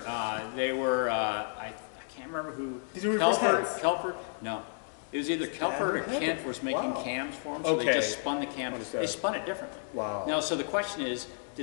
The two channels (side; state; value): right; silent; 57 dB below the other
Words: They were, I can't remember who. Did you reverse hands? Kelper? No. It was either Kelper or Kent was making cams for them, so they just spun the cam. They spun it differently. Wow. Now, so the question is,